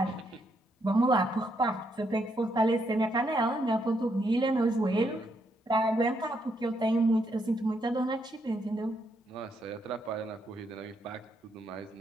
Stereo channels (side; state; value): both; normal; correlation 0.76